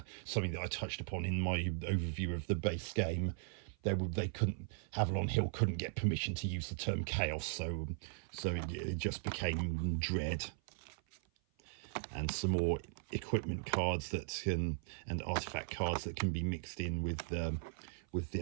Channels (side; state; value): left; silent; 52 dB below the other